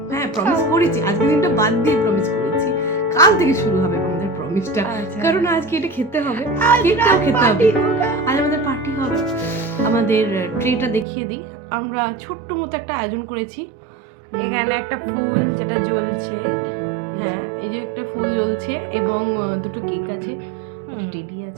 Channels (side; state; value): left; drops out; at 11.1 s